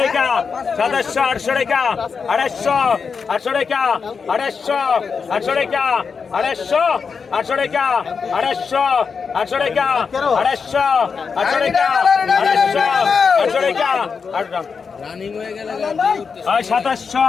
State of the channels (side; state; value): right; quieter; 5.6 dB